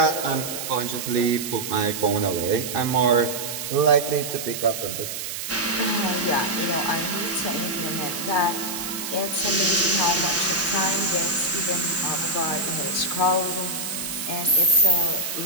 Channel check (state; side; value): noise; right; hiss, 6 dB below the sound